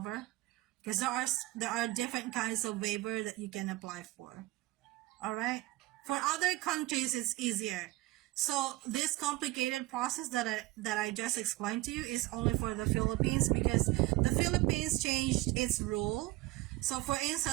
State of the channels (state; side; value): quieter; left; 19.1 dB